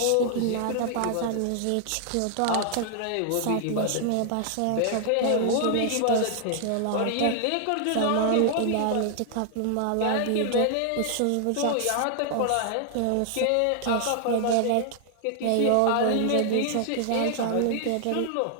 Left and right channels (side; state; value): both; different; correlation 0.00